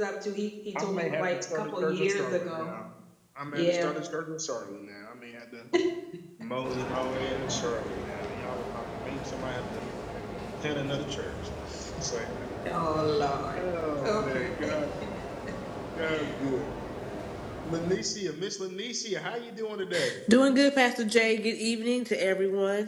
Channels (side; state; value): both; identical; correlation 1.00